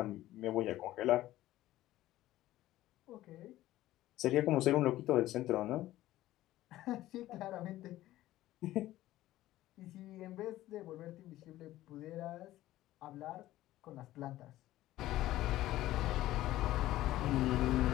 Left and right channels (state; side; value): quieter; right; 15.2 dB